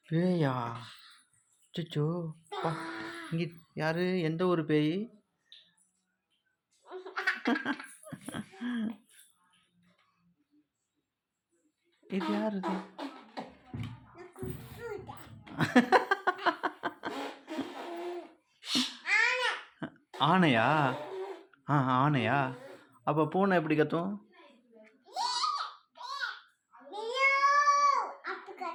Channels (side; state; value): both; identical; correlation 1.00